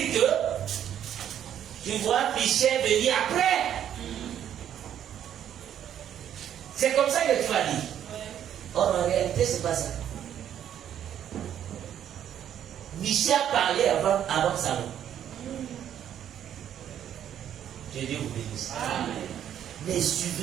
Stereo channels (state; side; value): quieter; left; 10.1 dB